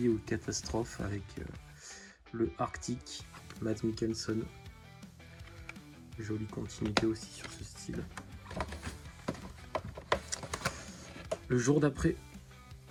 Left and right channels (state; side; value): identical; both; correlation 1.00